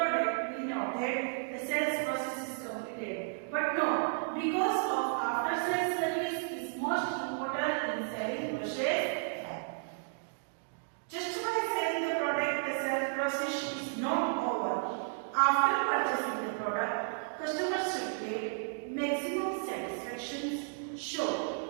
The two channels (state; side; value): silent; left; digital silence